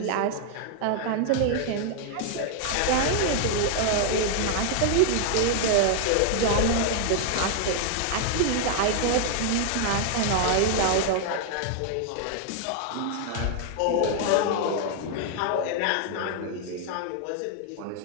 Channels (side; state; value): both; different; correlation 0.00